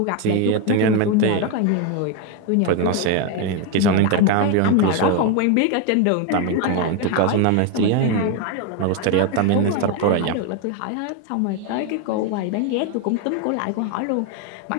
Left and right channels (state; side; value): different; both; correlation 0.01